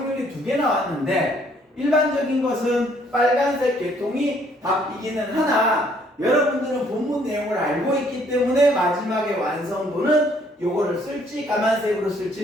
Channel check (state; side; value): normal; both; correlation 0.64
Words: 2개 나왔는데 일반적인 것은 빨간색 계통이 답이기는 하나 여러분들은 본문 내용을 알고 있기 때문에 마지막에 완성도는 요거를 쓸지 까만색으로